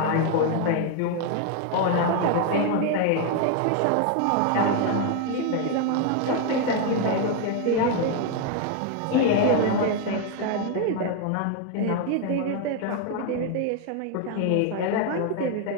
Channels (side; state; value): both; different; correlation 0.01